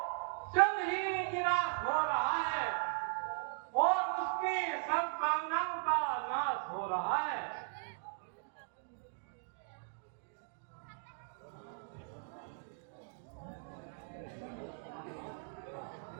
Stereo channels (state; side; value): silent; left; digital silence